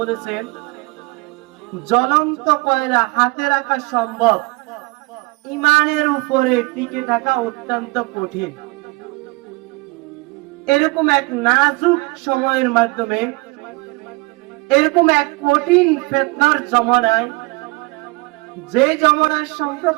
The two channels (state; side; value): quieter; left; 25.4 dB